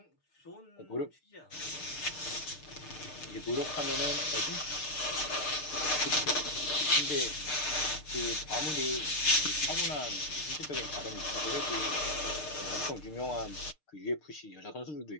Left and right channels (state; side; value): late; right; 6.6 ms